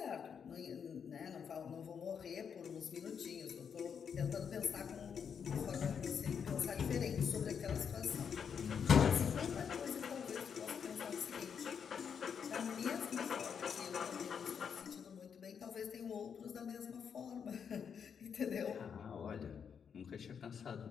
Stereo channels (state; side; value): quieter; right; 7.1 dB